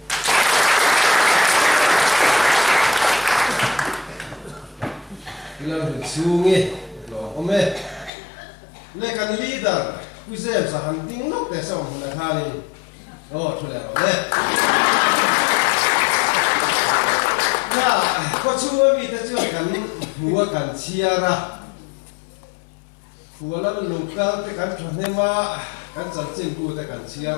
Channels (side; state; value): right; drops out; at 8.1 s